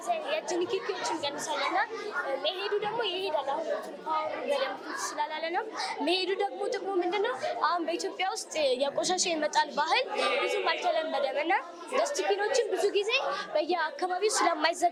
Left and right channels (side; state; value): both; identical; correlation 1.00